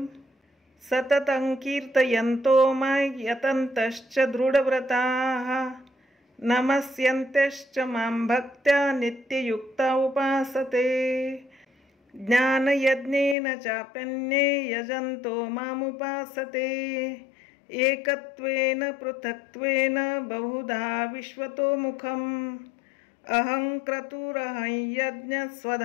सततं कीर्तयन्तो मां यतन्तश्च दृढव्रताः। नमस्यन्त्यश्च मां भक्त्या नित्ययुक्ता उपासते। ज्ञानयज्ञेन चाप्यन्ये यजन्तो मामुपासते। एकत्वेन पृथक्त्वेन बहुधा विश्वतोमुखम्। अहं क्रतुरहं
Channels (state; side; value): drops out; right; at 13.4 s